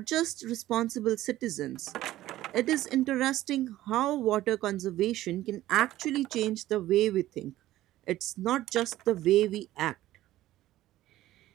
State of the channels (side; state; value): left; quieter; 14.9 dB